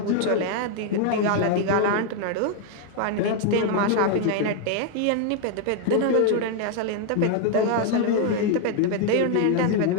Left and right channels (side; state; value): both; different; correlation 0.00